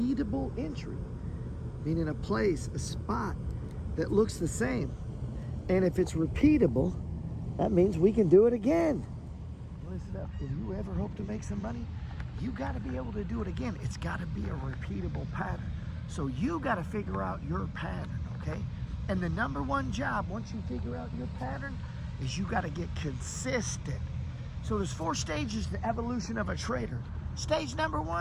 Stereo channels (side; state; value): both; identical; correlation 1.00